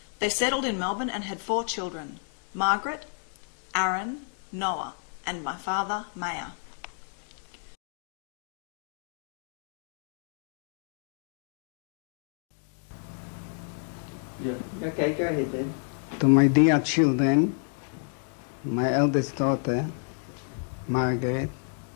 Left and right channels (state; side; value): silent; right; 57 dB below the other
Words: They settled in Melbourne and had 4 children, Margaret, Aaron, Noah, and my father, Maya. Yeah. Okay, go ahead then. To my dear children, my eldest daughter, Margaret,